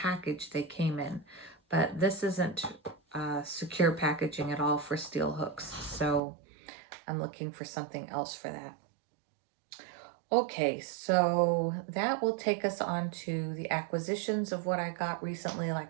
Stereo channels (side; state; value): left; drops out; at 6.2 s